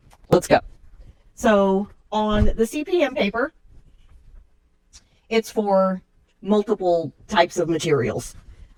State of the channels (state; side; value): identical; both; correlation 1.00